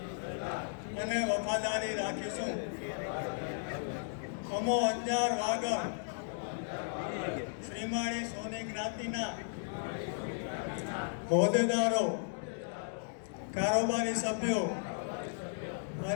અને વફાદારી રાખીશું। અમો અંજાર વાગડ શ્રીમાળી સોની જ્ઞાતિના હોદ્દેદારો, કારોબારી સભ્યો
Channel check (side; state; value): right; silent; digital silence